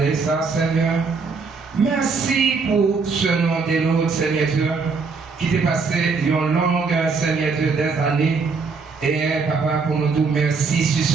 ça, Seigneur. Merci pour ce nom de l'autre, Seigneur Dieu, qui t'est passé une longue, Seigneur Dieu, des années. Et Papa, pour nous dire merci sur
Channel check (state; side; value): quieter; left; 4.7 dB